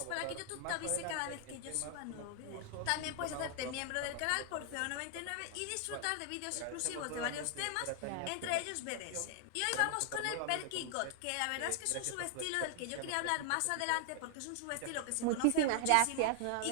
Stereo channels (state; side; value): different; both; correlation 0.00